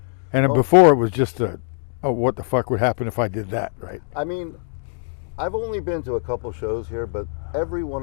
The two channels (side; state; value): right; silent; 62 dB below the other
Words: And before it was just what the fuck would happen if I did that, right? I mean, I've only been to a couple shows here, but every